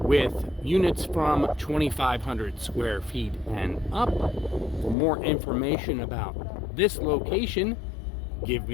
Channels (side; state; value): right; drops out; at 5.0 s